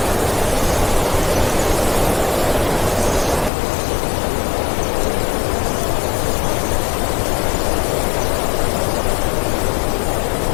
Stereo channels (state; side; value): drops out; right; at 3.5 s